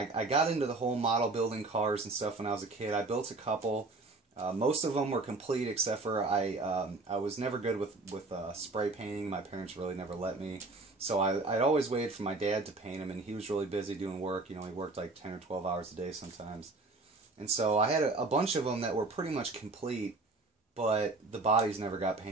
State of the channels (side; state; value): left; quieter; 3.4 dB